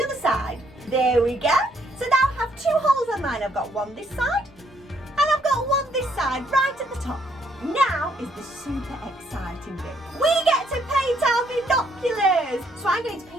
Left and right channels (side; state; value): both; normal; correlation 0.70